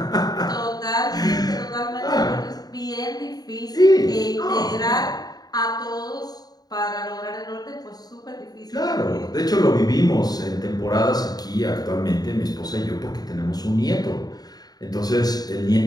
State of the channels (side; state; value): right; late; 0.19 ms